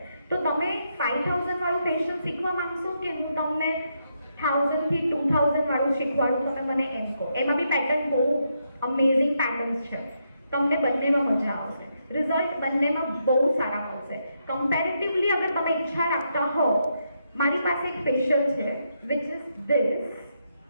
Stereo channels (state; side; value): inverted; both; correlation -0.80